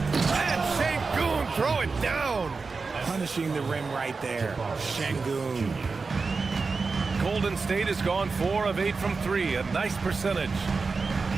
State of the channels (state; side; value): quieter; left; 4.4 dB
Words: Şengün throw it down. Punishing the rim right there. Şengün. Golden State has gone 4 of 8 from 3. A nice percentage.